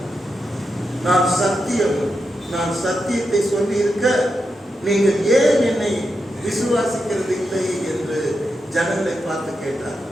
நான் சத்தியத்தை சொல்லி இருக்க நீங்கள் ஏன் என்னை விசுவாசிக்கிறது இல்லை என்று ஜனங்களை பார்த்து கேட்டார்.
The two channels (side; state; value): both; normal; correlation 0.87